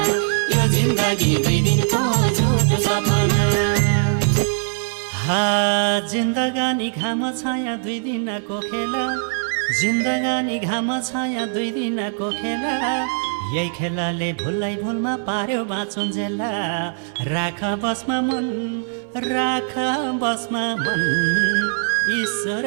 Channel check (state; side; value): silent; left; 63 dB below the other